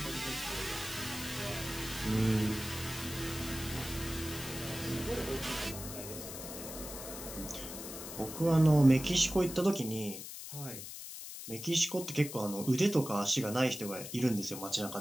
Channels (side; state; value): left; noise; hiss, 10 dB below the sound